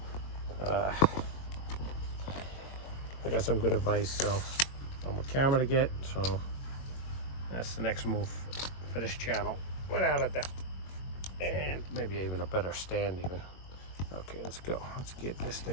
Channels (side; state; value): right; late; 22 ms